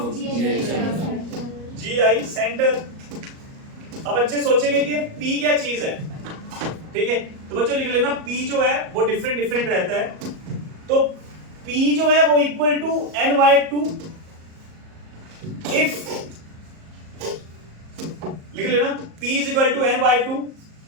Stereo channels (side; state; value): left; late; 38 ms